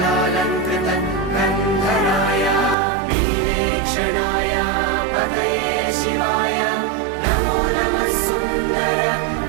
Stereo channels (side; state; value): left; drops out; at 2.8 s